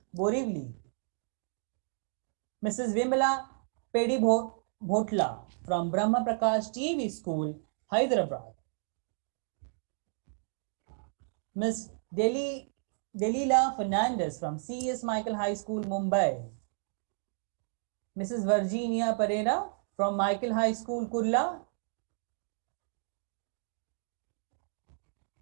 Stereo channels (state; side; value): silent; left; digital silence